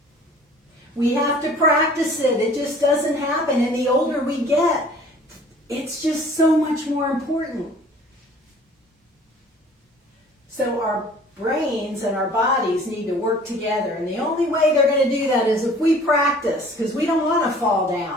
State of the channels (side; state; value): both; normal; correlation 0.50